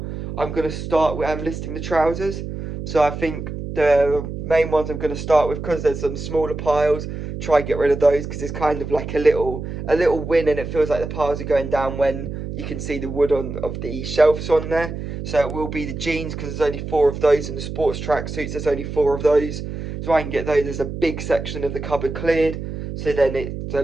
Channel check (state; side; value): noise; right; hum, 7 dB below the sound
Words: I'm going to start with listing the trousers. So I think the main ones I'm going to start with, because there's some smaller piles, try and get rid of those, because it's kind of like a little win, and it feels like the piles are going down when you can see the wood of the shelves on there. So it will be the jeans, because there's only 4 of those, and the sports tracksuits, there's only 4 of those. So I can get those as a big section of the cupboard cleared. So then it's a